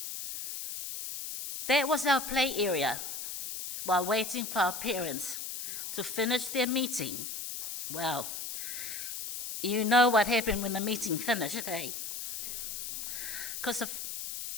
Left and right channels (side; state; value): left; noise; hiss, 6 dB below the sound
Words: That was our play area while waiting for our parents to finish their meeting. Well, you know what happened when the meeting finished, eh? Because of